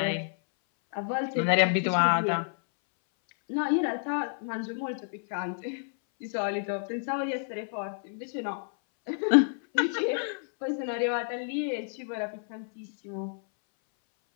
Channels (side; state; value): right; silent; 58 dB below the other